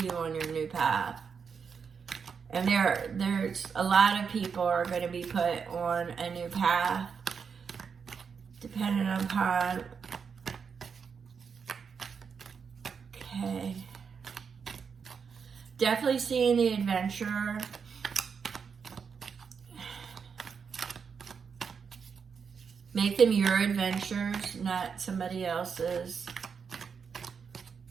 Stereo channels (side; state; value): left; quieter; 6.2 dB